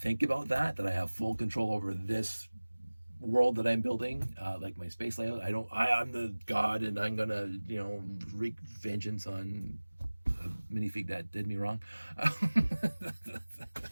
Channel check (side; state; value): both; inverted; correlation -1.00